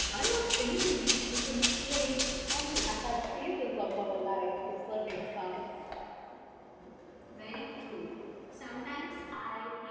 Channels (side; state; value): both; identical; correlation 1.00